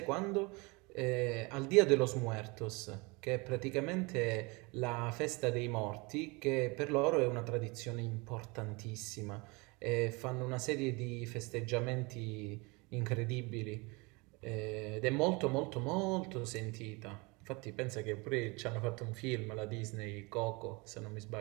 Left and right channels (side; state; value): left; quieter; 27.2 dB